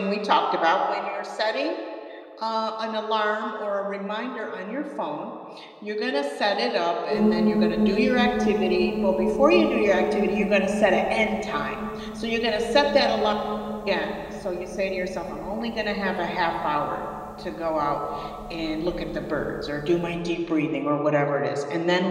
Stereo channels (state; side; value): identical; both; correlation 1.00